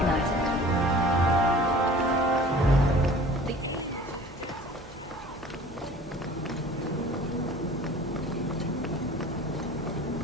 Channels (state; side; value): normal; both; correlation 0.46